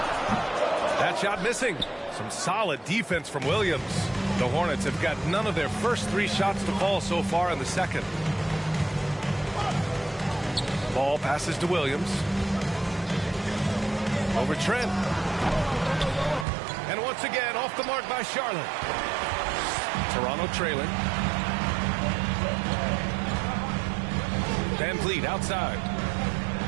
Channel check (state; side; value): drops out; left; at 16.4 s